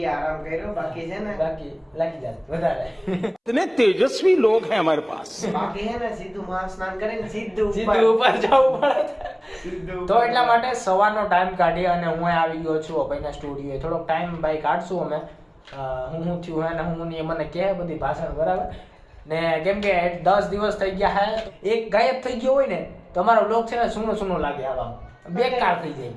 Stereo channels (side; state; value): both; identical; correlation 1.00